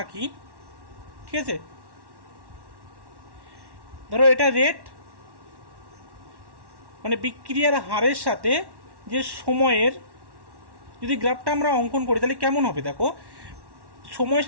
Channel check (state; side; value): late; left; 1.1 ms